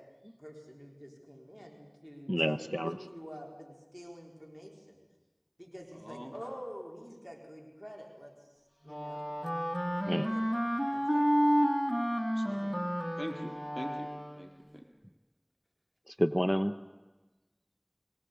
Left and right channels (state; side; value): identical; both; correlation 1.00